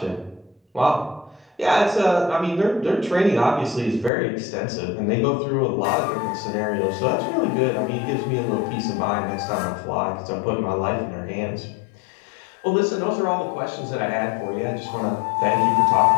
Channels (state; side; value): drops out; right; at 4.1 s